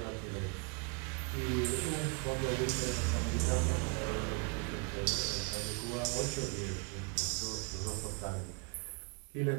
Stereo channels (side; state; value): left; quieter; 33.9 dB